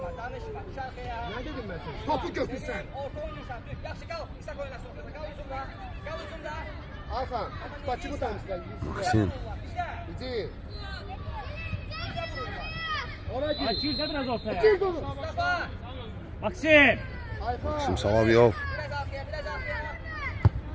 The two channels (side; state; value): both; identical; correlation 1.00